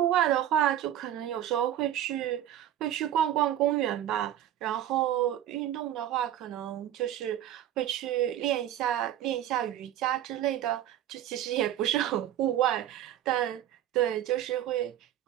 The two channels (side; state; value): left; quieter; 11.8 dB